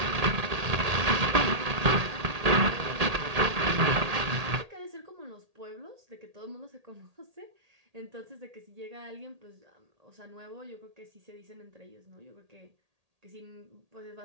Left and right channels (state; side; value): late; left; 1.8 ms